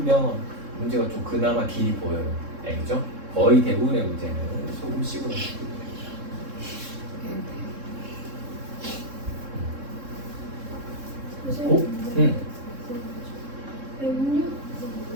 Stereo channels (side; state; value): left; late; 3.7 ms